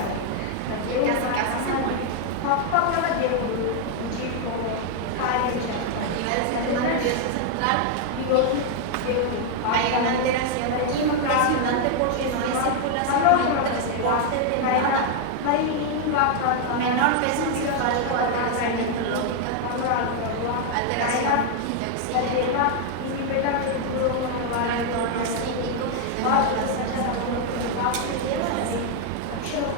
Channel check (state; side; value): different; both; correlation 0.00